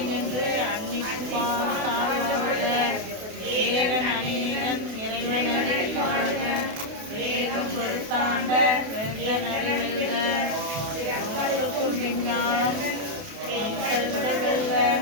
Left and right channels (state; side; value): late; left; 28 ms